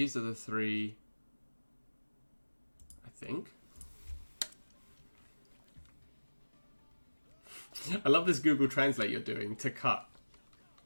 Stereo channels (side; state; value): both; inverted; correlation -1.00